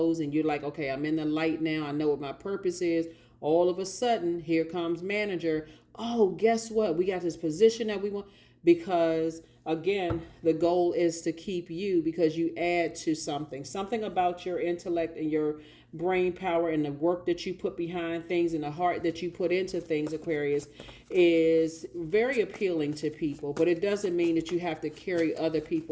and you're like, okay, I'm in the light now, I know what my purpose is. All of a sudden, here comes manager. Oh, guess what? We got this position that we want. Because again, the goal is to keep you, because you add to something about your intellect and your brain power and the work that you put behind things and the heart that you put into things, Aquarius, is very appealing to people. But it doesn't mean that you have to carry other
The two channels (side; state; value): both; identical; correlation 1.00